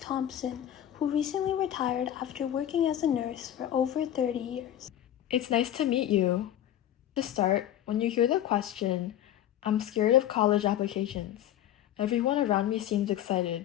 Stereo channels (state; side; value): quieter; right; 11.6 dB